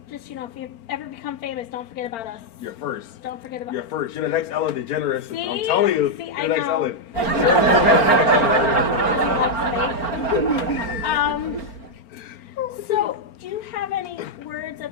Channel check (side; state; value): right; late; 4.4 ms